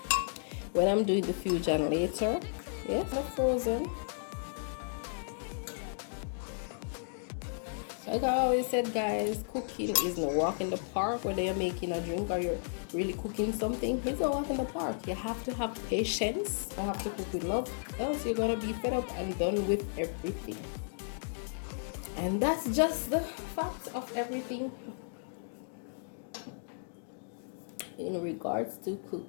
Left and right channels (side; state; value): right; silent; digital silence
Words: when I'm doing the fusion later. Yes, not frozen. Like I always said, guys, cooking is no walk in the park, whether you're making a drink or you're really cooking something. It's a walk in the park. You have to have patience. You have to cook with love, else you're gonna be fed up and done with everything. And that's just the fact of everything in regards to